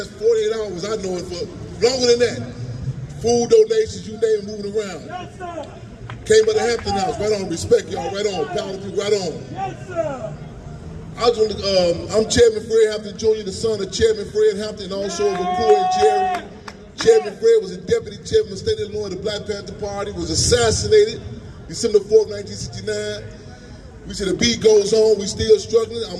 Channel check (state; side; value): identical; both; correlation 1.00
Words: 48 hours, I know it, for longer than that. Food donations, you name it, moving around. Yes, sir. Came by the Hampton House, right on, respect y'all, right on, power to people, right on. Yes, sir. I'm Chairman Fred Hampton Jr., the son of Chairman Fred Hampton, and also of McCoy and Jerry. Chairman Fred was a deputy chairman of the state of Illinois of the Black Panther Party, was assassinated December 4th, 1969. We said the beat goes on, we still struggling,